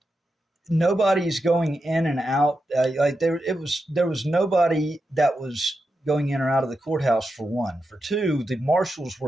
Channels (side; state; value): both; normal; correlation 0.88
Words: nobody's going in and out. There was nobody that was going in or out of the courthouse, for one. For two, the marshals